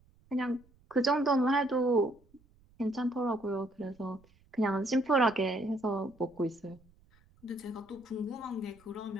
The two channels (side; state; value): right; noise; rumble, 30 dB below the sound